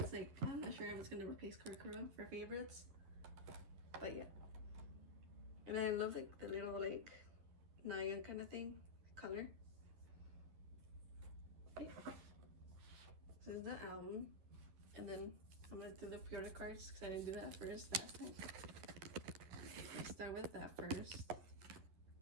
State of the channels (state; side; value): late; left; 11 ms